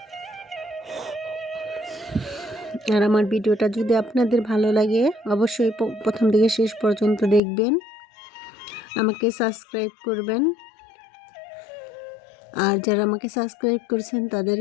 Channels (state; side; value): drops out; right; at 7.4 s